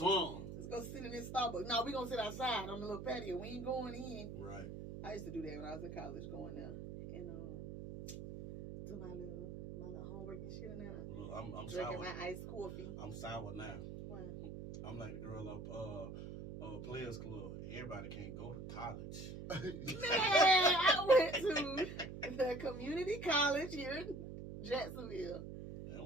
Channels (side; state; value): right; noise; hum, 8 dB below the sound